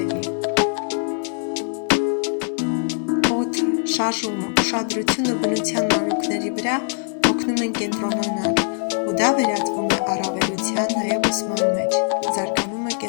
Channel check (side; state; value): right; silent; 56 dB below the other